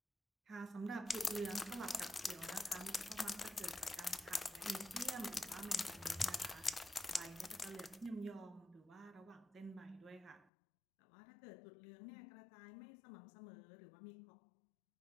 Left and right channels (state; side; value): drops out; right; at 10.5 s